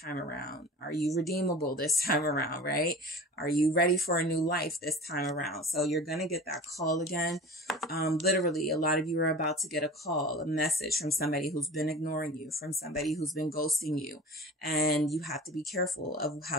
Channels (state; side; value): normal; both; correlation 0.38